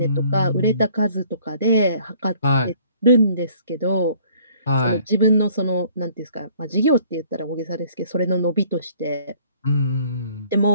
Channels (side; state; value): both; inverted; correlation -0.58